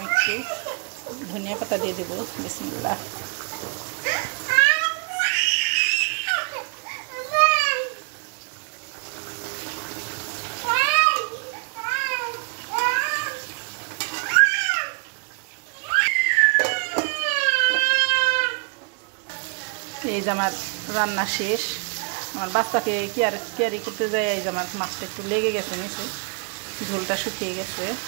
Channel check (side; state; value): left; quieter; 35.3 dB